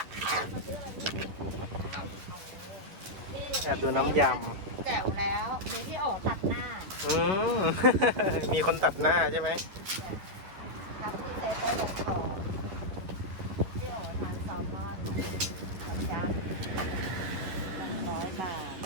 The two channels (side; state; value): left; late; 11 ms